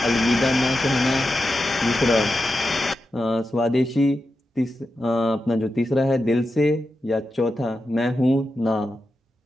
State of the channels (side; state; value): both; normal; correlation 0.89